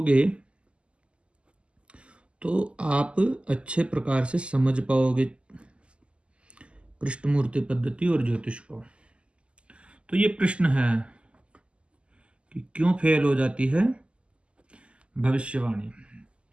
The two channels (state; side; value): late; left; 0.054 ms